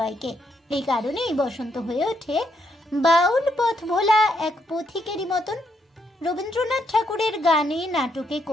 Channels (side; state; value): both; normal; correlation 0.76